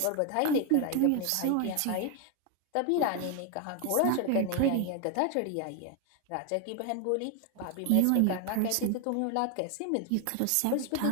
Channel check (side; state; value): both; different; correlation 0.01